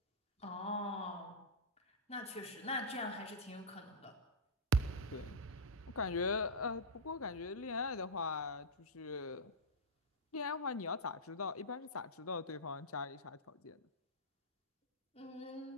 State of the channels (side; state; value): both; normal; correlation -0.09